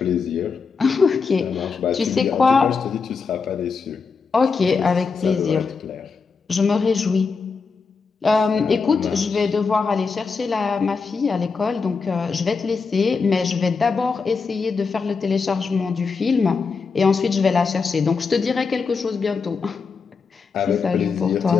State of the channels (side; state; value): right; quieter; 5.0 dB